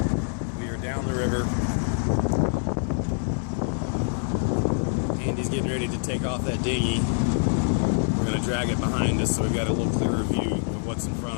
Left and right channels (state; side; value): silent; right; 61 dB below the other